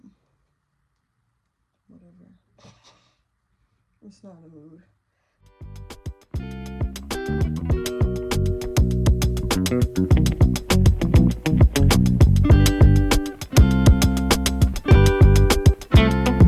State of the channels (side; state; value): both; identical; correlation 1.00